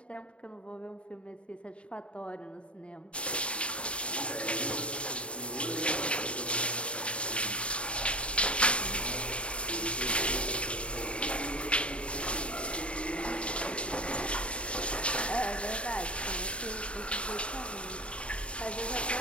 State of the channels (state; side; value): late; right; 0.059 ms